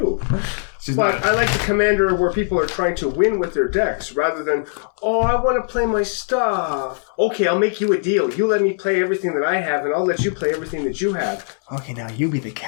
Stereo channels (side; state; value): right; silent; 66 dB below the other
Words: But I like the Commander where people are trying to win with their decks rather than, oh, I want to play my stuff. Okay, I'll make you a deal. You let me play everything that I have, and I'll let you play everything that you have. Okay, now you be the